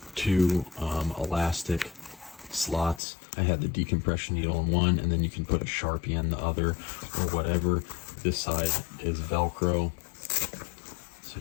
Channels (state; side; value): drops out; right; at 3.0 s